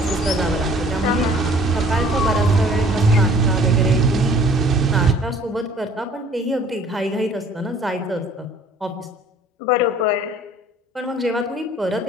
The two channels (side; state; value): both; normal; correlation 0.53